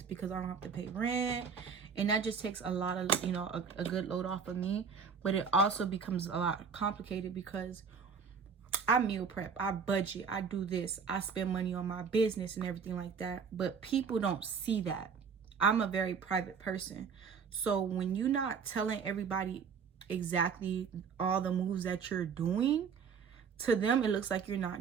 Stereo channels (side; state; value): left; quieter; 6.1 dB